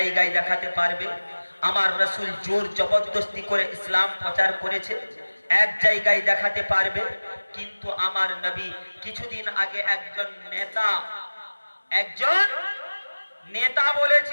দেখাতে পারবে আমার রাসূল জোর জবরদস্তি করে ইসলাম প্রচার করেছে? এক জায়গায় দেখাতে পারবে? কিন্তু আমার নবী কিছুদিন আগে একজন নেতা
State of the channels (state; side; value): inverted; both; correlation -1.00